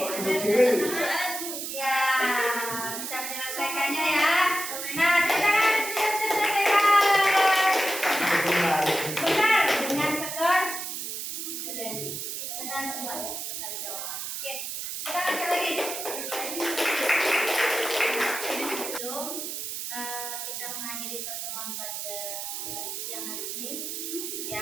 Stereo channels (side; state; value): right; noise; hiss, 5 dB below the sound